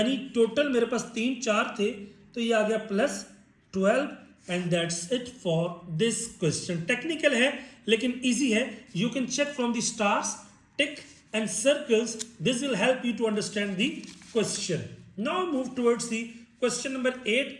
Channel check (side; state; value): both; identical; correlation 1.00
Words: टोटल मेरे पास 3 4 थे, तो ये आ गया plus 12। And that's it for this question. Technical है लेकिन इजी है। You can check from the stars, tick and circles, this will help you to understand the question. Now move towards the question number 8,